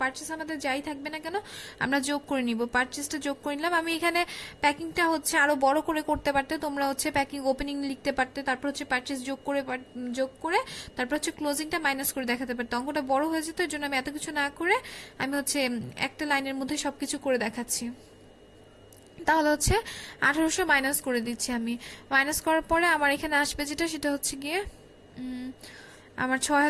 পারচেস আমাদের যাই থাকবে না কেন আমরা যোগ করে নিব। পারচেসটা যোগ করে নিলাম। আমি এখানে প্যাকিংটা হচ্ছে আরো বড় করে করতে পারতে, তোমরা হচ্ছে প্যাকিং ওপেনিং লিখতে পারতে, তারপর হচ্ছে পারচেস যোগ করে তারপর হচ্ছে ক্লোজিংটা মাইনাস করে দেখাতে পারতে। অঙ্কটা বড় হয়ে যেত, এর জন্য আমি এত কিছু না করে আমি হচ্ছে একটা লাইনের মধ্যে সবকিছু করে দেখাচ্ছি। তাহলে হচ্ছে 1800 মাইনাস করে দিচ্ছি আমি। মাইনাস করার পরে আমার এখানে আসবে যেটা, সেটা হচ্ছে গিয়ে আমার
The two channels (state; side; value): identical; both; correlation 1.00